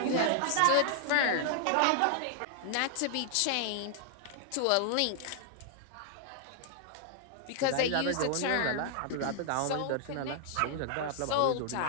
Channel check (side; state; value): both; different; correlation 0.00